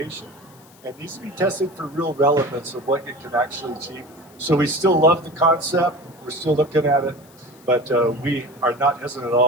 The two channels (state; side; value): noise; left; hiss, 27 dB below the sound